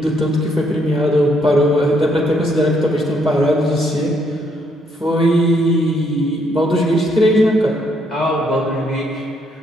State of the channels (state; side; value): normal; both; correlation 0.72